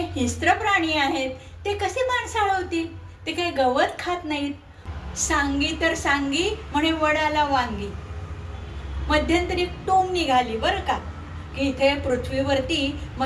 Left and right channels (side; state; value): both; identical; correlation 1.00